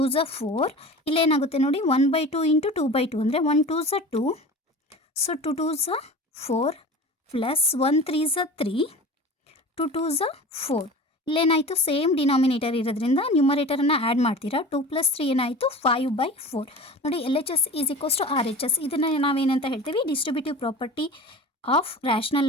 ಝ 4. ಇಲ್ಲೇನಾಗುತ್ತೆ ನೋಡಿ? 1/2 ಇಂಟು 2/2 ಅಂದರೆ 1 2 ಝ 2, ಸೊ 2 2 ಝ 4 ಪ್ಲಸ್ 1 3 ಝ 3, 2 2 ಝ 4. ಇಲ್ಲೇನಾಯಿತು? ಸೇಮ್ ಡಿನಾಮಿನೇಟರ್ ಇರೋದ್ರಿಂದ ನ್ಯೂಮರೇಟರನ್ನು ಆ್ಯಡ್ ಮಾಡ್ತೀರಾ. 2 + 3 ಏನಾಯಿತು? 5/4. ನೋಡಿ L H S is equals to R H S. ಇದನ್ನು ನಾವೇನಂತ ಹೇಳ್ತೀವಿ? Distributive property of rational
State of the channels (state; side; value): normal; both; correlation 0.36